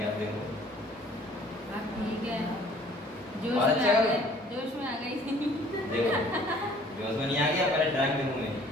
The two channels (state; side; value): normal; both; correlation 0.55